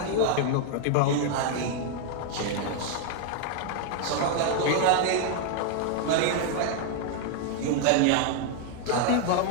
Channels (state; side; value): different; both; correlation 0.00